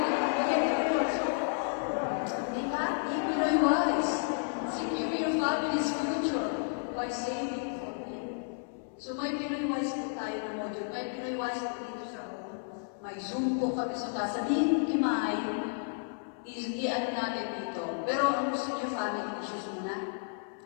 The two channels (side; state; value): right; silent; 56 dB below the other